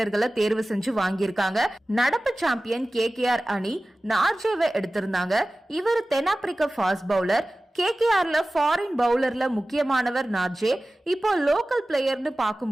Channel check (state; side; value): normal; both; correlation 0.97